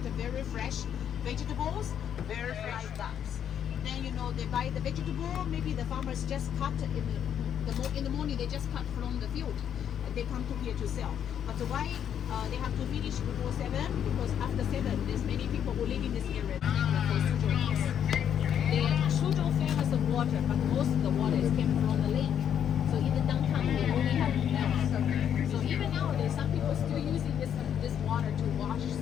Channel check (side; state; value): right; quieter; 9.1 dB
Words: very fresh vegetables, very fresh bugs. Then they buy the vegetable, maybe the farmers just cut in the morning, they just cut from the field. They come to here to sell. But why they have to finish before 7? Because after 7, there's many people who live in this area. Suzhou famous of water, but most of the water is came from the lake. So in the downtown, they only have wells. So even nowadays, some people still using this water to wash